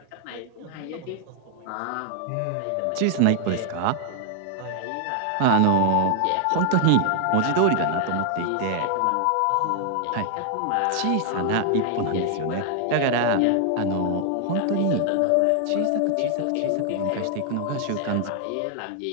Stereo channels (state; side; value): different; both; correlation 0.00